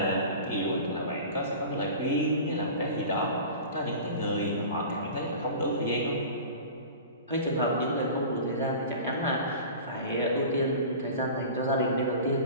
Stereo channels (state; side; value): inverted; both; correlation -0.36